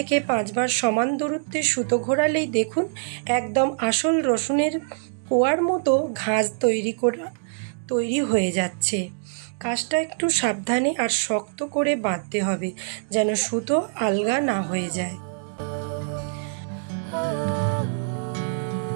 5 বার সমান দূরত্বে সুতো ঘোরালেই দেখুন একদম আসল রসুনের কোয়ার মতো ঘাঁজ তৈরি হয়ে যাচ্ছে। কাজটা একটু সাবধানে আর শক্ত করে বাঁধতে হবে, যেন সুতো আলগা না হয়ে যায়।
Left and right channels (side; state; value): left; silent; digital silence